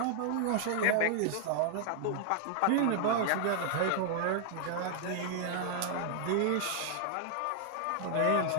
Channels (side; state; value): both; different; correlation -0.01